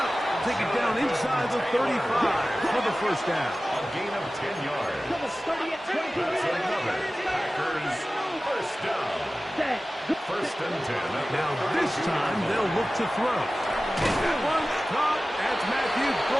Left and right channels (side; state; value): both; normal; correlation 0.96